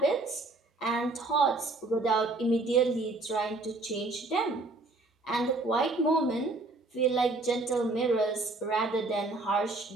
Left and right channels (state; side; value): quieter; left; 3.1 dB